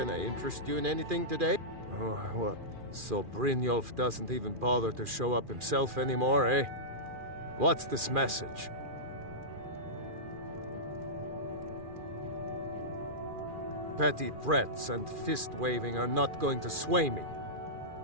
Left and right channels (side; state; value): left; late; 2.4 ms